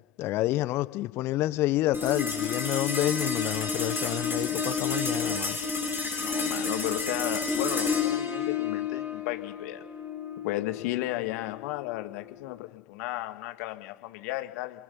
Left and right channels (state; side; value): quieter; right; 8.4 dB